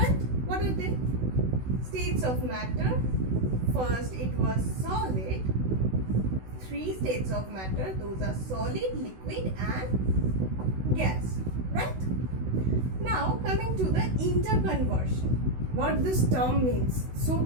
What are they? States of matter. First it was solid. 3 states of matter, those are solid, liquid and gas, right? Now coming to the interconversion, what this term means, so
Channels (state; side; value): late; left; 16 ms